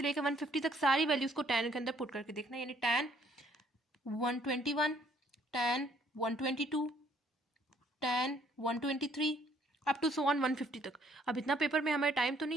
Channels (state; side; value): normal; both; correlation 0.64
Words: लेकर 150 तक सारी वैल्यूज को tan के अंदर पुट करके देखना है, यानी tan 121, tan 122, tan 123 up to so on 150 तक। अब इतना पेपर में हमारे टाइम तो